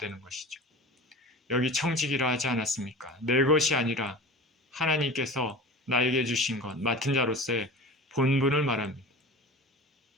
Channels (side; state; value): both; normal; correlation 0.35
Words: 것이죠. 여기 청지기라 하지 않았습니까? 내 것이 아니라 하나님께서 나에게 주신 것, 맡은 자로서의 본분을 말합니다.